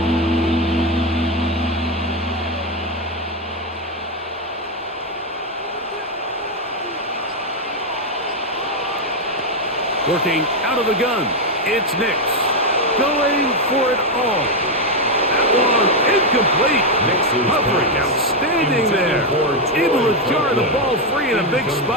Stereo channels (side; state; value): both; normal; correlation 0.05